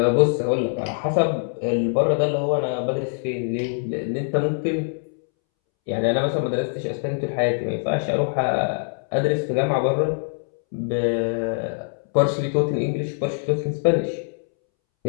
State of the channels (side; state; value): right; silent; 63 dB below the other